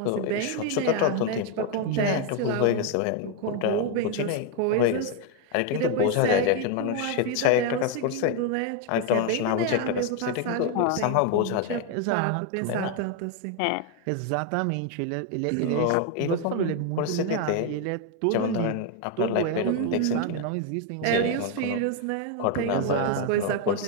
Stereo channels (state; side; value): different; both; correlation 0.01